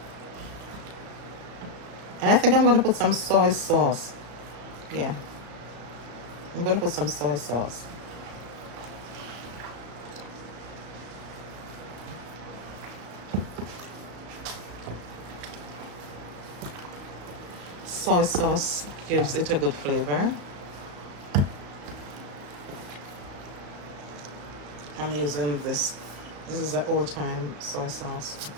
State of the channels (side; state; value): left; late; 35 ms